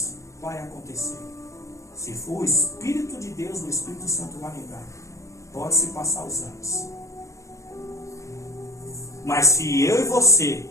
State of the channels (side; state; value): right; late; 0.15 ms